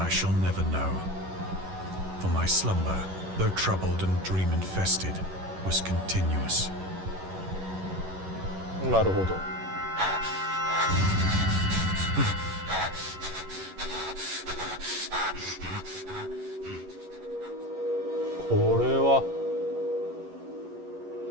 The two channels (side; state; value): left; late; 11 ms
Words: shall never know. For my slumber, though troubled and dream-infested, was continuous. なるほど。これは